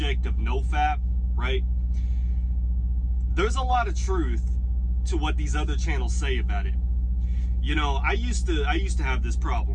of nofap, right, there's a lot of truth to what these other channels say about it. I used to have this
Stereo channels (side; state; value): both; identical; correlation 1.00